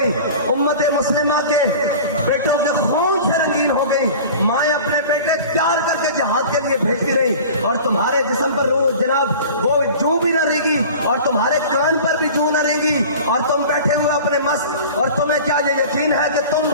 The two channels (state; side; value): inverted; both; correlation -0.39